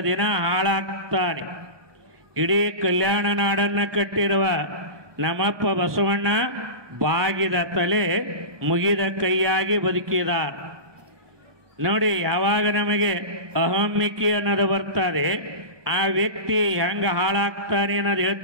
ದಿನ ಹಾಳಾಗ್ತಾನೆ. ಇಡೀ ಕಲ್ಯಾಣ ನಾಡನ್ನು ಕಟ್ಟಿರುವ ನಮ್ಮಪ್ಪ ಬಸವಣ್ಣ ಬಾಗಿದ ತಲೆ ಮುಗಿದ ಕೈಯಾಗಿ ಬದುಕಿದಾರ. ನೋಡಿ, ಯಾವಾಗ ನಮಗೆ ಅಹಮ್ಮಿಕೆ ಅನ್ನೋದು ಬರ್ತದೆ, ಆ ವ್ಯಕ್ತಿ ಹೆಂಗೆ ಹಾಳಾಗ್ತಾನೆ ಅನ್ನೋದು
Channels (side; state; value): left; late; 1.2 ms